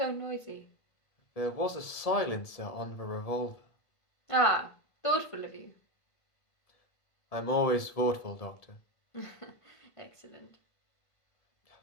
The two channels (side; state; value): right; late; 1.7 ms